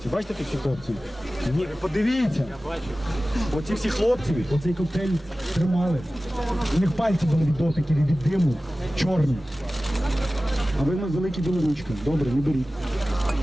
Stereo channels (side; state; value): both; normal; correlation 0.96